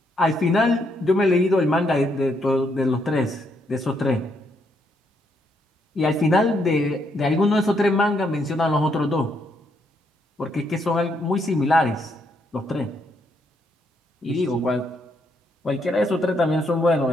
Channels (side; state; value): both; normal; correlation 0.75